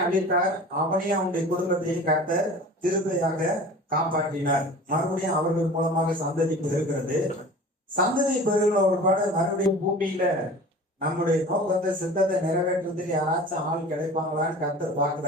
அளித்தார். அவனையும் அவனுடைய குடும்பத்தையும் கர்த்தர் கிருபையாக காப்பாற்றினார். மறுபடியும் அவர்கள் மூலமாக சந்ததி பெறுகிறது. சந்ததி பெறுகிற ஒரு பாடு மறுபடியும் பூமியில நம்முடைய நோக்கத்தை, சித்தத்தை நிறைவேற்றுறதுக்கு யாராச்சும் ஆள் கிடைப்பாங்களான்னு கர்த்தர்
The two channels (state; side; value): normal; both; correlation 0.40